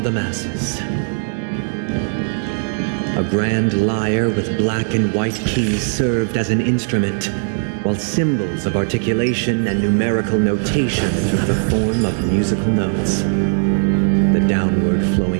the masses. A grand lyre with black and white keys served as an instrument, while symbols of articulation and numerical notation took the form of musical notes. The downward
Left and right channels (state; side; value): silent; left; 67 dB below the other